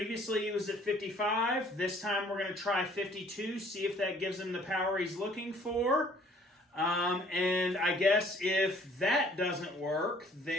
he was at 55. This time, we're going to try 52, see if that gives him the power he's looking for. And I guess if that doesn't work,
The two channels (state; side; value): normal; both; correlation 0.57